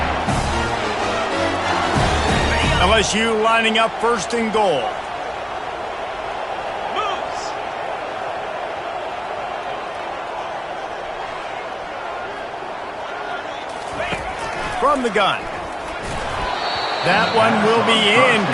LSU lining up 1st and goal. From the gun. That one will be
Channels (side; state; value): both; identical; correlation 1.00